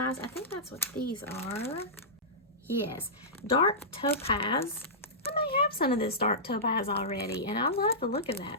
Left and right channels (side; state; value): both; normal; correlation -0.15